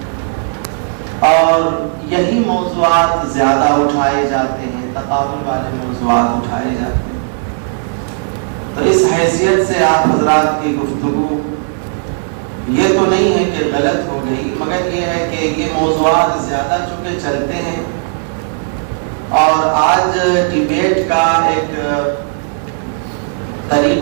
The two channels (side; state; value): left; silent; digital silence